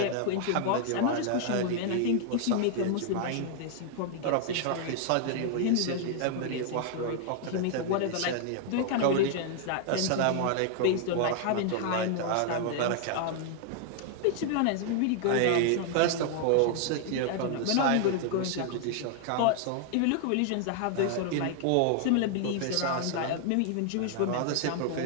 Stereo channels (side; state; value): both; different; correlation 0.00